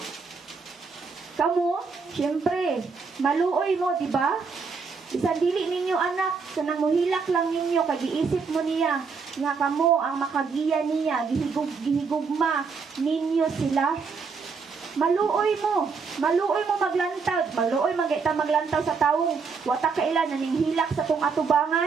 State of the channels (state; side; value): quieter; left; 5.1 dB